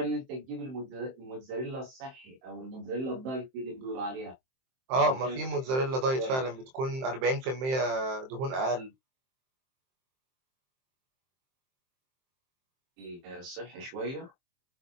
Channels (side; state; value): left; late; 23 ms